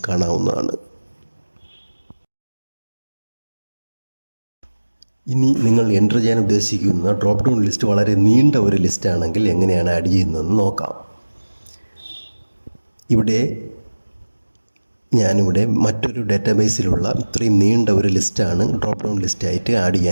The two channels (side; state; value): both; inverted; correlation -1.00